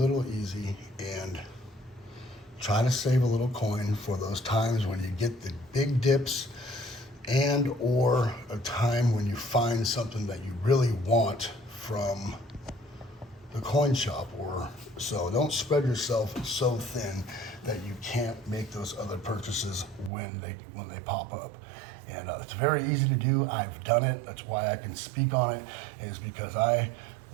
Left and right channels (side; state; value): left; drops out; at 20.1 s